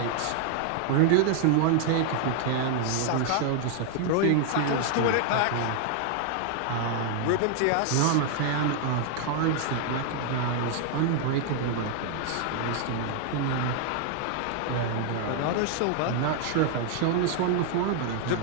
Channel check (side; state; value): both; different; correlation 0.00